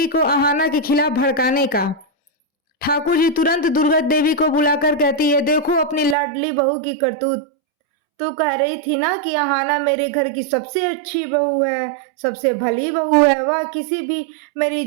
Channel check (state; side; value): drops out; left; at 6.2 s